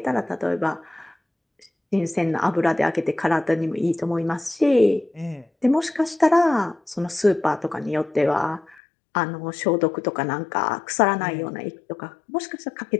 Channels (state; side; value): drops out; right; at 8.8 s